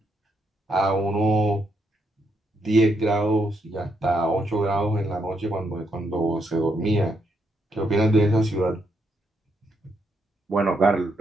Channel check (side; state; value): both; normal; correlation 0.77